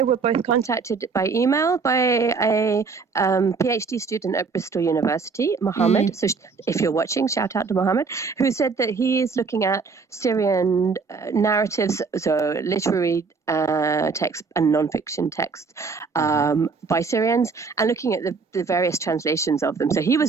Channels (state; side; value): quieter; left; 4.8 dB